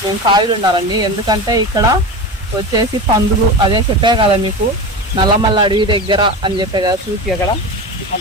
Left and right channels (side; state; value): both; normal; correlation 0.26